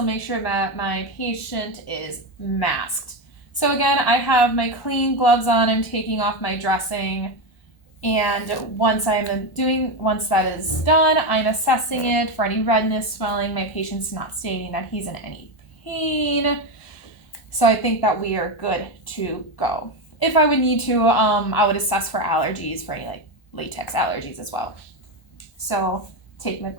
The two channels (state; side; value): late; right; 1.3 ms